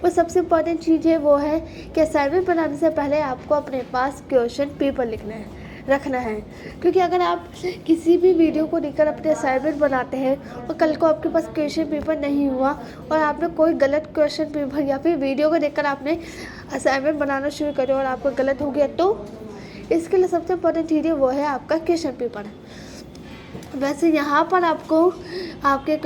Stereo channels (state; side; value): identical; both; correlation 1.00